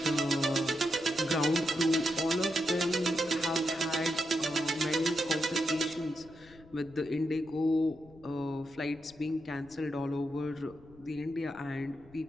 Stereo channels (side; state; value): left; noise; rumble, 24 dB below the sound